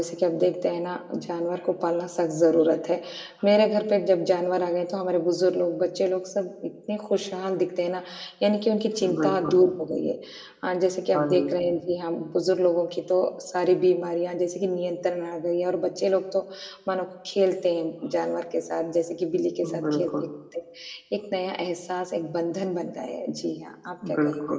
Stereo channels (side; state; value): both; identical; correlation 1.00